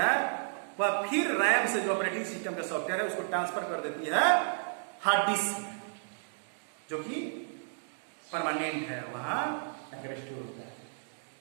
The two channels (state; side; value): silent; left; digital silence